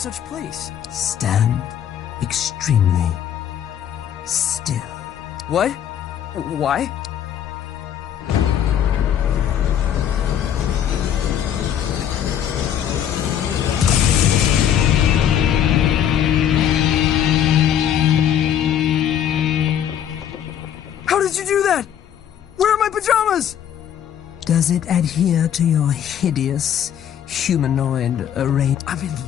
place. Stand extremely still. What? Why? How did you do that? Where are my pajamas? Does it adhere to your hideous humanoid array? I'm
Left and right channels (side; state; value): right; quieter; 9.6 dB